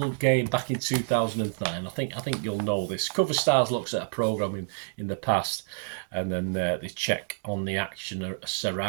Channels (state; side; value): silent; left; digital silence